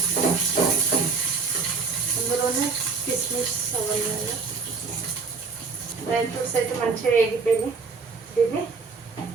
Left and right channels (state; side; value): quieter; left; 4.7 dB